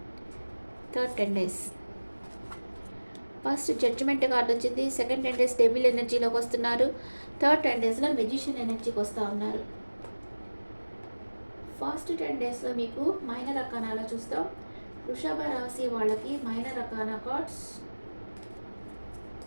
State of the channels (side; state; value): both; inverted; correlation -1.00